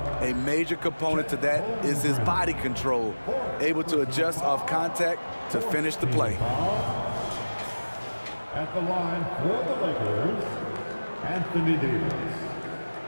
a major component to that is his body control, able to adjust off contact to finish the play. At the line for the Lakers, Anthony Davis.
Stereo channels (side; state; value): both; inverted; correlation -1.00